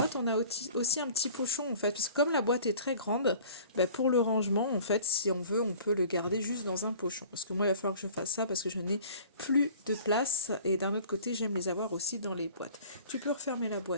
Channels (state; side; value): inverted; both; correlation -0.47